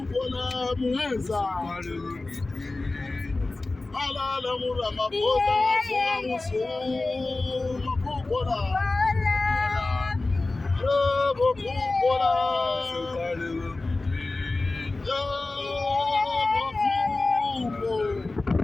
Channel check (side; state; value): right; quieter; 3.2 dB